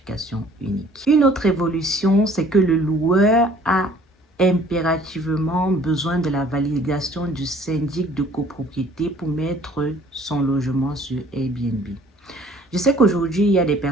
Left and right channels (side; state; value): both; normal; correlation 0.55